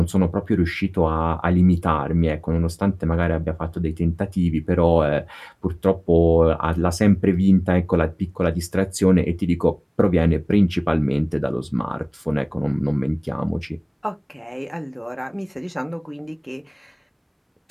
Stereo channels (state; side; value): identical; both; correlation 1.00